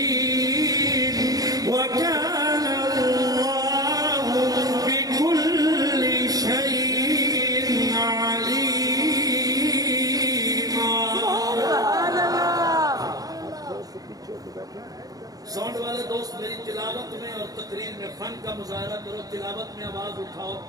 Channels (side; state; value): left; late; 0.18 ms